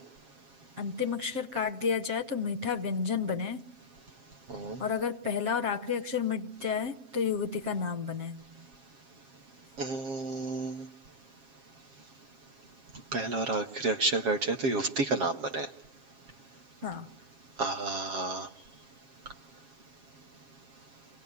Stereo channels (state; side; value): late; left; 7.5 ms